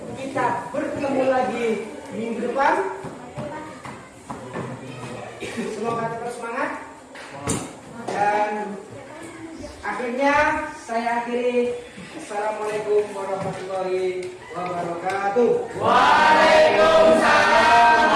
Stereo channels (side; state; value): both; identical; correlation 1.00